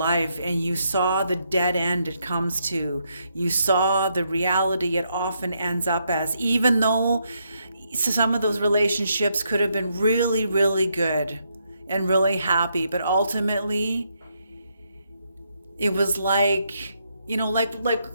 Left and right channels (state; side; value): inverted; both; correlation -0.77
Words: and you saw the dead end it comes to. You saw the reality it often ends up as, even though some of those relationships could have been really, really good and really happy, but ultimately it was like,